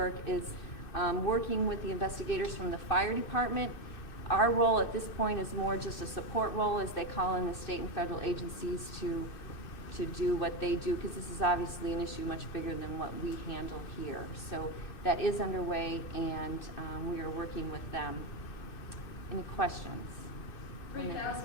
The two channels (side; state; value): right; late; 2.6 ms